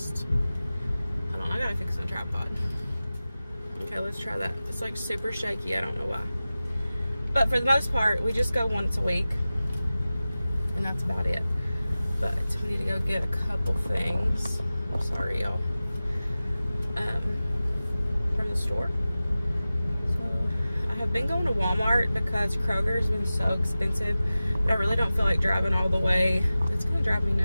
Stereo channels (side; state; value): both; inverted; correlation -0.96